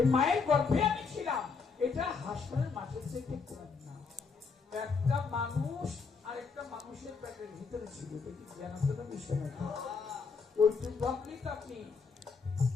মায়ের গর্ভে আমি ছিলাম, এটা হাসপাতালের মাঠের থেকে কম না। একটা মানুষ আর একটা মানুষের পেটের ভিতরে ছিল, জানাতে বিষয় না। ওইটুকু ভাবলেই তো আপনি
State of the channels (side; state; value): right; quieter; 5.1 dB